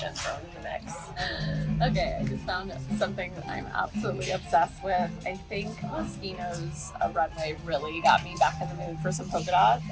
thrown in the mix. Okay, I just found something that I'm absolutely obsessed with. I think Moschino's runway really got me back in the mood for some polka dots,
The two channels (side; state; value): both; identical; correlation 1.00